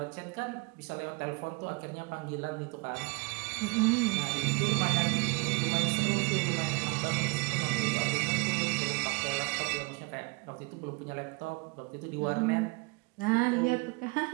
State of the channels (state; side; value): quieter; left; 28.8 dB